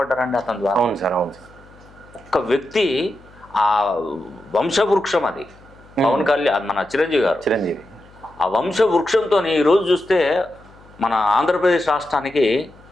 అతని ద్వారా. అవును సార్, అవును సార్. ఒక్క వ్యక్తి ఆ వంశవృక్షం అది. పవన్ కళ్యాణ్ మన చిరంజీవి ఆ వంశవృక్షంతో ఈరోజు చూస్తే మన ఆంధ్రప్రదేశ్ రాష్ట్రానికి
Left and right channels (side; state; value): left; noise; hum, 25 dB below the sound